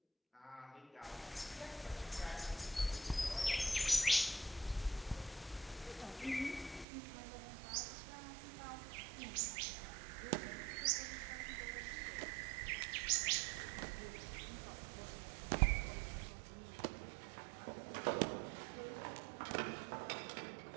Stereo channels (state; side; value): drops out; left; at 6.9 s